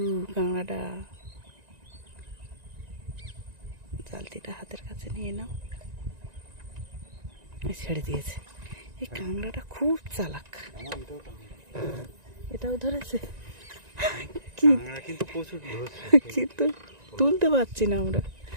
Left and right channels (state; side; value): late; left; 1.9 ms